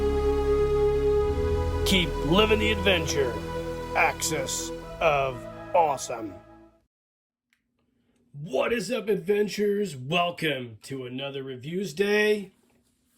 Keep living the adventure. Axis of Awesome. What is up, adventurers? Welcome to another Reviews Day.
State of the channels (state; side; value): identical; both; correlation 1.00